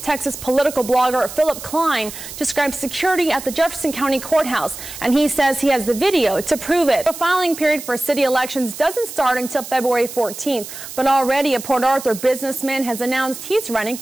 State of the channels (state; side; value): noise; right; hiss, 12 dB below the sound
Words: Texas political blogger Philip Klein describes security at the Jefferson County Courthouse, and he says he has the video to prove it. The filing period for city elections doesn't start until February 14th, but already a Port Arthur businessman has announced he's running